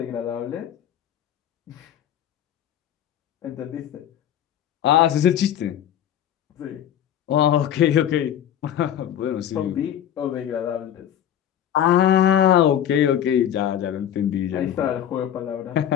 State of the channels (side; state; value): right; quieter; 10.3 dB